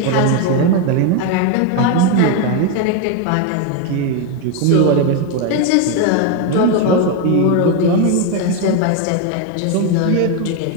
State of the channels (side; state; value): both; different; correlation 0.02